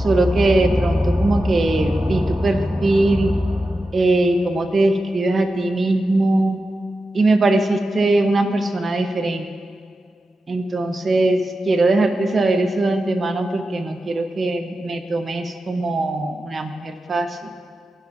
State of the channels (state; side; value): normal; both; correlation 0.91